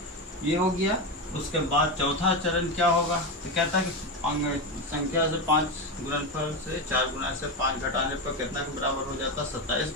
ये हो गया। उसके बाद चौथा चरण क्या होगा, तो कहता है कि संख्या से 5 गुणनफल से 4 गुना से 5 घटाने पर कितना के बराबर हो जाता है, 27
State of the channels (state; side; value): normal; both; correlation 0.15